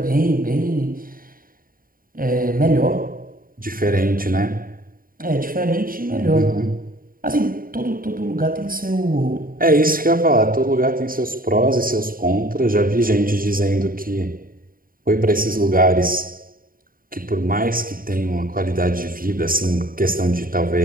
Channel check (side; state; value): left; late; 0.41 ms